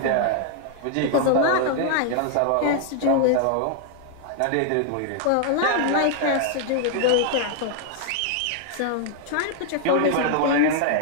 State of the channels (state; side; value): different; both; correlation -0.01